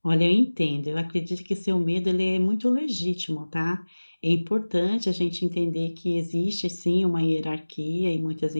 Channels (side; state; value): both; inverted; correlation -1.00